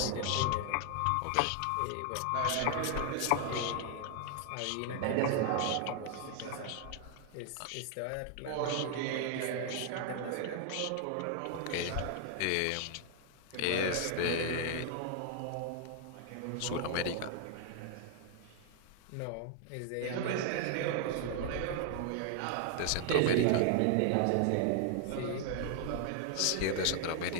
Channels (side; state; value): both; different; correlation 0.00